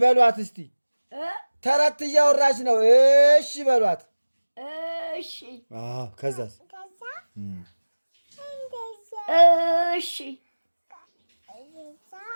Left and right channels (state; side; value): inverted; both; correlation -1.00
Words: በሏት እስቲ። ተረት እያወራች ነው። እሺ በሏት። እሺ ከዛስ እሺ